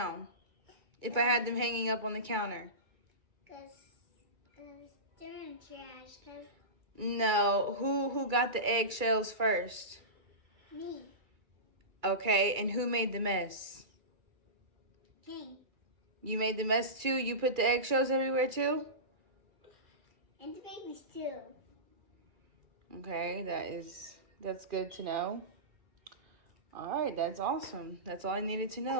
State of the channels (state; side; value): late; left; 2.3 ms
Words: if I had them hanging up on the counter? Because they're in trash. Because No, who got the eggshells first? me, Okay, and who made the mess? King, You made the mess too? You put the eggshells everywhere too? and the babies too. Okay, that's good to know. All right, that's awesome. That's all I needed to